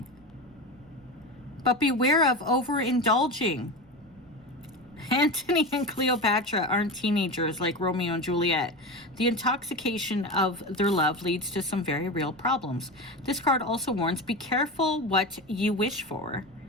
but beware of overindulging. Antony and Cleopatra aren't teenagers like Romeo and Juliet. The intoxication of their love leads to some very real problems. This card also warns, be careful what you wish for.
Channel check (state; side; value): noise; right; rumble, 29 dB below the sound